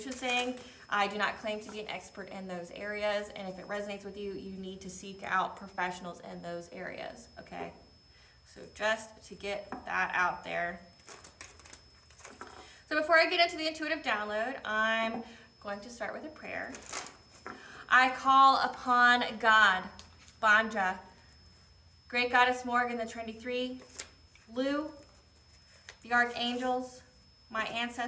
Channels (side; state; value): both; identical; correlation 1.00